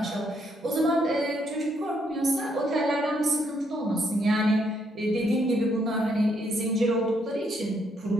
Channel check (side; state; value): both; normal; correlation 0.73